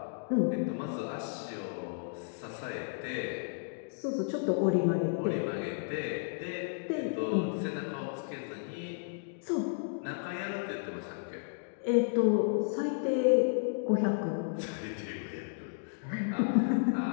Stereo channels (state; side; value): silent; right; digital silence